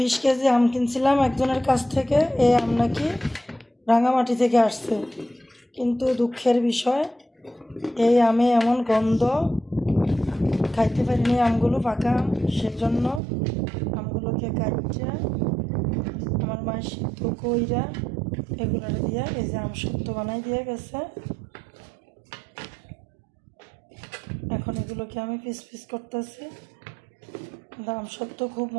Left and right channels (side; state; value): left; drops out; at 13.2 s